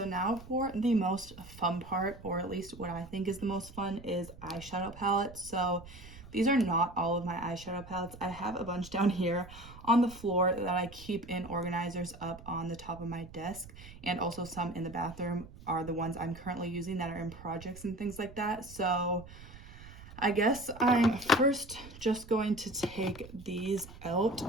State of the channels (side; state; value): right; noise; rumble, 17 dB below the sound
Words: now for the most fun part, or at least what I think is the most fun, is eyeshadow palettes. So these are not all of my eyeshadow palettes. I have a bunch down here on the floor that I keep in organizers up on the top of my desk, and also some in the bathroom are the ones I'm currently using that are in projects and things like that. So I guess I'm first just going to take these out.